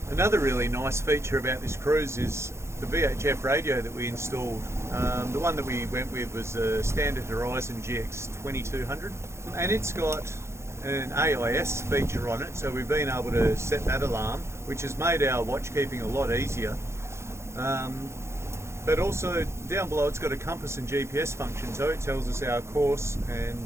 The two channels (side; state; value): left; late; 0.13 ms